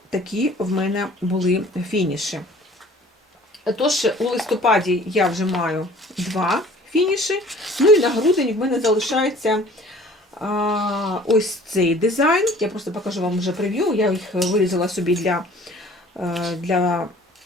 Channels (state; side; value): normal; both; correlation 0.50